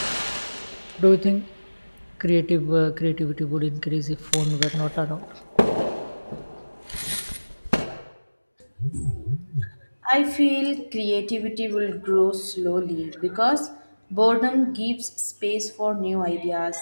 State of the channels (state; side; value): inverted; both; correlation -1.00